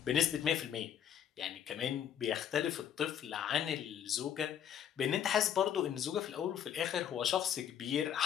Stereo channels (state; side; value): quieter; right; 9.4 dB